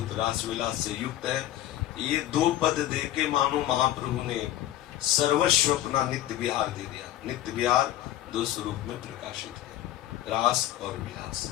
रास विलास से युक्त है, ये दो पद दे के मानो महाप्रभु ने सर्वस्व अपना नित्य विहार दे दिया। नित्य विहार दो स्वरूप में प्रकाशित है, रास और विलास।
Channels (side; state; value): right; quieter; 13.6 dB